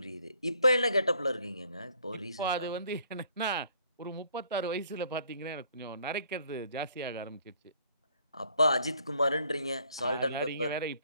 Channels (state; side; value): inverted; both; correlation -0.63